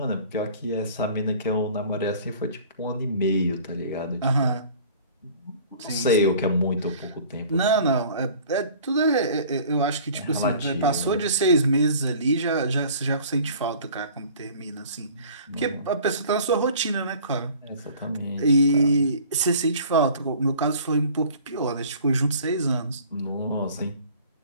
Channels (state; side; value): inverted; both; correlation -0.48